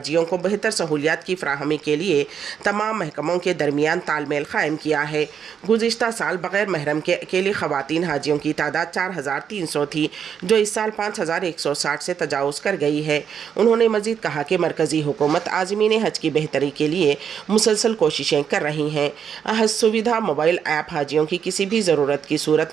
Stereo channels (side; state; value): left; quieter; 7.7 dB